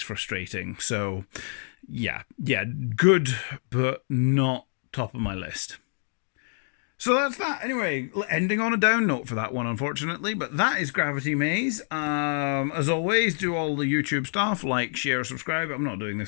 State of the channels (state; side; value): silent; right; 58 dB below the other